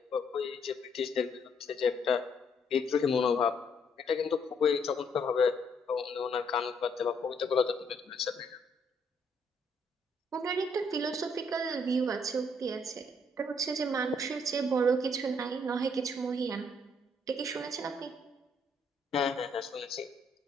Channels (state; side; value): normal; both; correlation 0.70